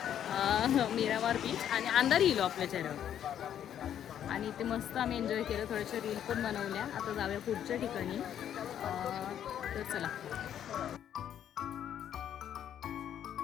मीरामार बीच आणि अंधारी इलो आपल्या चेहऱ्यावर. आणि इथे मस्त आम्ही एन्जॉय केलं, थोड्याशा रील पण बनवल्या. आता जाऊया पुढच्या ठिकाणी. तर चला.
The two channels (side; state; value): right; quieter; 9.9 dB